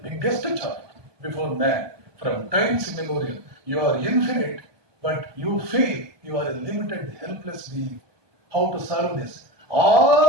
biggest challenge before man. From times immemorial, you are infinite, but you feel you are a limited, helpless being. How to solve this?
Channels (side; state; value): left; late; 1.2 ms